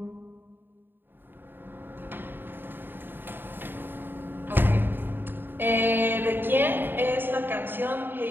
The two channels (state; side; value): late; left; 0.095 ms